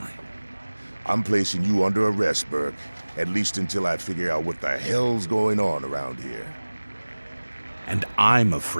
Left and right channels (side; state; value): both; inverted; correlation -1.00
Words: I'm placing you under arrest, Burke. At least until I figure out what the hell's going on around here. And I'm